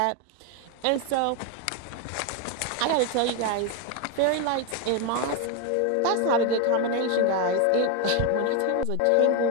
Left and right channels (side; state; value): both; different; correlation 0.02